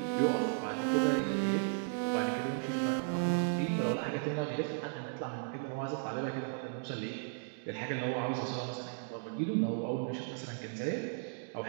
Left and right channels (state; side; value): silent; left; digital silence